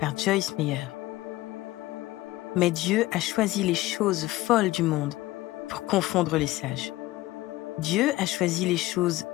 Joyce Meyer. Mais Dieu a choisi les choses folles du monde pour confondre les sages. Dieu a choisi les choses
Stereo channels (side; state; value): right; quieter; 17.7 dB